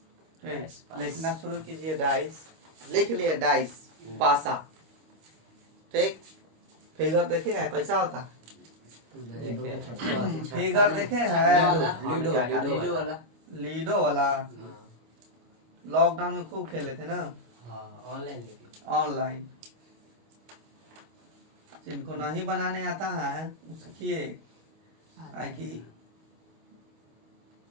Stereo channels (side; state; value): left; late; 25 ms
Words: लिखना शुरू कीजिए। डाइस लिख लिए। डाइस पासा। ठीक। फिगर देखे है कैसा होता है? फिगर देखे है? लीडो वाला लॉकडाउन में खूब खेले थे ना। ऑनलाइन जिनको नहीं बनाने आता है सीखिए। कि